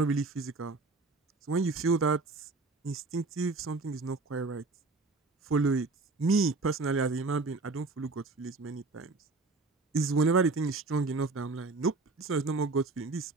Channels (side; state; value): left; quieter; 3.6 dB